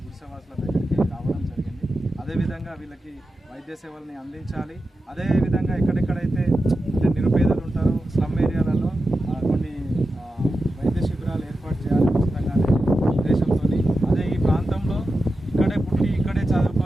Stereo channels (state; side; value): normal; both; correlation 0.91